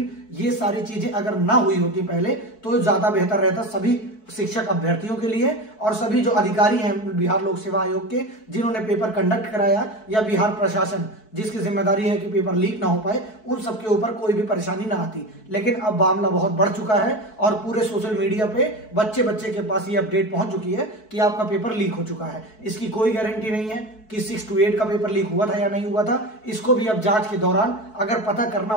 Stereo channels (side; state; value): right; late; 4.6 ms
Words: ये सारी चीजें अगर ना हुई होती पहले तो ज्यादा बेहतर रहता सभी शिक्षक अभ्यर्थियों के लिए, और सभी जो अधिकारी हैं बिहार लोक सेवा आयोग के, जिन्होंने पेपर कंडक्ट कराया, या बिहार प्रशासन जिसकी जिम्मेदारी है कि पेपर लीक ना हो पाए, उन सबके ऊपर कोई भी परेशानी ना आती। लेकिन अब मामला बहुत बढ़ चुका है, और पूरे सोशल मीडिया पे बच्चे के पास ये अपडेट पहुंच चुकी है कि आपका पेपर लीक हो चुका है। इसकी कोई गारंटी नहीं है कि 6 to 8 का पेपर लीक हुआ था या नहीं हुआ था। इसको भी अब जांच के दौरान अगर पता करना